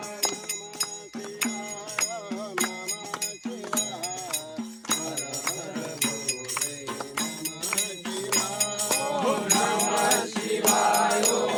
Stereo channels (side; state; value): both; identical; correlation 1.00